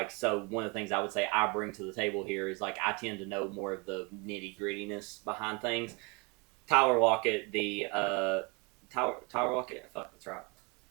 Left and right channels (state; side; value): quieter; left; 29.9 dB